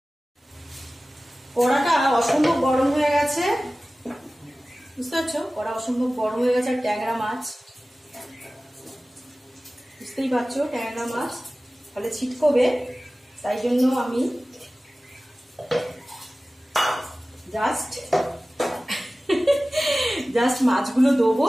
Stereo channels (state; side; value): normal; both; correlation 0.97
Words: কড়াটা অসম্ভব গরম হয়ে গেছে, বুঝতে পারছো? কড়া অসম্ভব গরম হয়ে গেছে। আর ট্যাংরা মাছ বুঝতেই পারছো, ট্যাংরা মাছ তাহলে ছিটকবে, তাই জন্য আমি জাস্ট মাছগুলো দেবো,